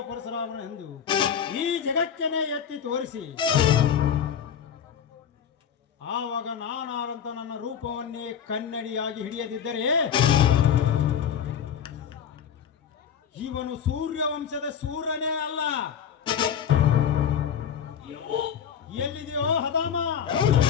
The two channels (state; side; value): quieter; right; 8.2 dB